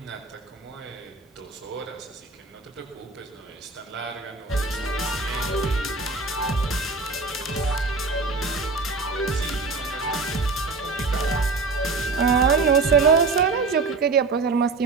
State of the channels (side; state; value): left; quieter; 3.9 dB